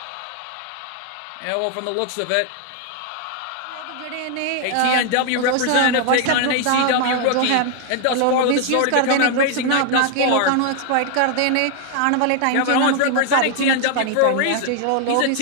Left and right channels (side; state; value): both; different; correlation 0.00